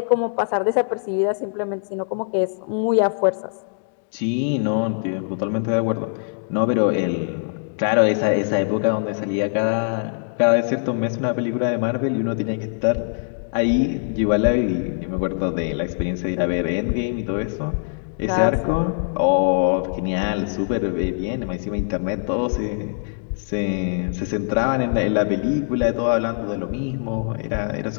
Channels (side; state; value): right; silent; digital silence